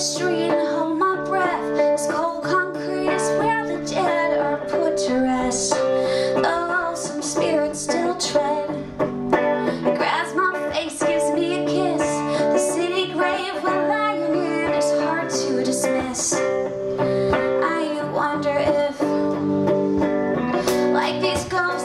and hold my breath. This cold concrete is where the dead are put to rest. Oh, some spirits still tread. It grabs my face, gives me a kiss. The city grave we're lying in is hard to dismiss. I wonder if, like these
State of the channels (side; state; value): both; identical; correlation 1.00